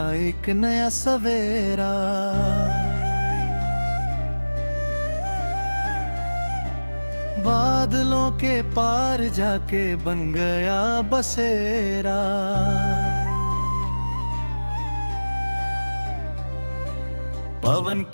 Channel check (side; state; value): both; inverted; correlation -1.00